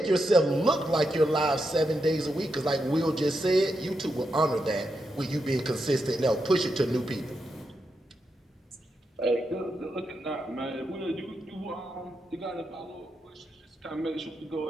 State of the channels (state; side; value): normal; both; correlation 0.85